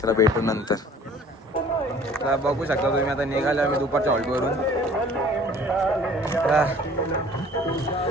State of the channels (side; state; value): both; normal; correlation 0.51